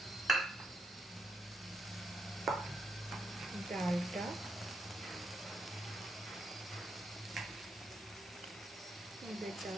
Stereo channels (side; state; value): both; normal; correlation 0.80